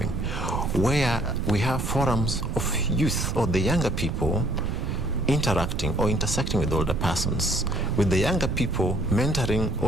where we have forums of youth or the younger people interacting or intersecting with older persons, with the younger people mentoring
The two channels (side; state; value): right; noise; rumble, 2 dB below the sound